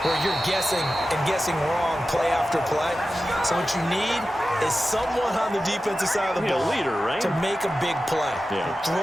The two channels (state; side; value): normal; both; correlation 0.94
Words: where you're guessing and guessing wrong play after play. So what you need is someone on the defensive side of the ball, leader, right? to make a big play. Yeah.